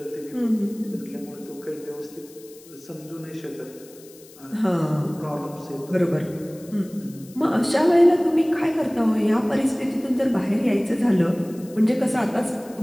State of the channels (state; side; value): noise; left; hiss, 23 dB below the sound